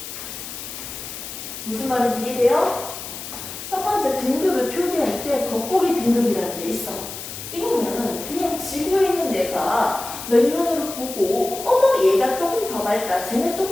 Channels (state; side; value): noise; left; hiss, 10 dB below the sound